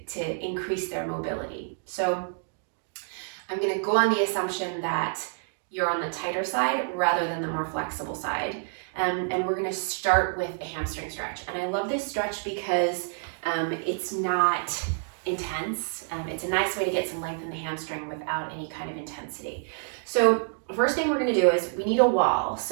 increase their mobility. So I'm going to go on the assumption that you're on the tighter side rather than the more flexible side. And we're going to start with a hamstring stretch. And I love this stretch because it's not intense. It's a nice way to get some length in the hamstring without any kind of intensity. So first thing we're going to do is we need a wall.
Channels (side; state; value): left; silent; digital silence